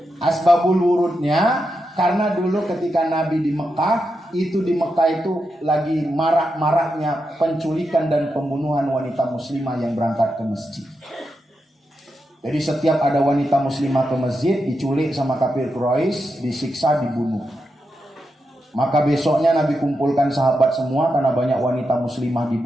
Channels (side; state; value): both; normal; correlation 0.86